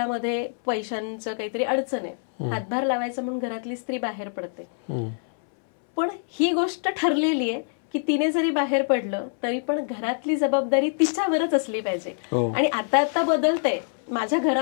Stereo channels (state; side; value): silent; right; 62 dB below the other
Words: पैशांचं काहीतरी अडचण आहे, हातभार लावायचा म्हणून घरातली स्त्री बाहेर पडते, पण ही गोष्ट ठरलेली आहे की तिने जरी बाहेर पडलं तरी पण घरातली जबाबदारी तिच्यावरच असली पाहिजे. आणि आता बदलतंय माझ्या